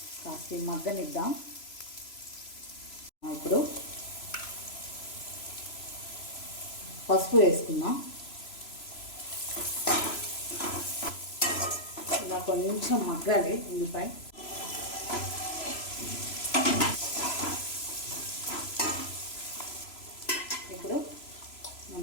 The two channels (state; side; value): late; right; 3.0 ms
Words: కాస్త మగ్గనిద్దాం. ఇప్పుడు పసుపు వేసుకుందాం. ఇలా కొంచెం మగ్గాలి ఉల్లిపాయ. ఇప్పుడు